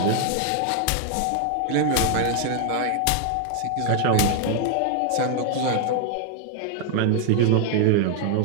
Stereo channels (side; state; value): both; different; correlation 0.00